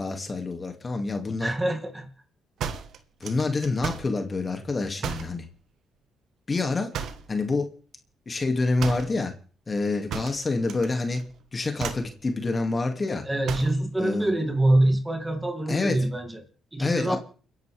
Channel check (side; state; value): both; normal; correlation 0.92